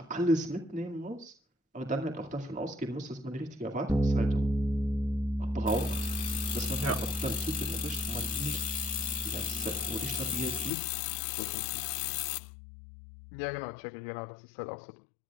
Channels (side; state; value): right; drops out; at 10.7 s